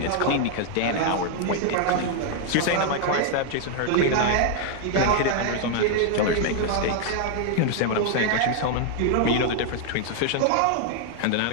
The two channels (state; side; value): different; both; correlation 0.00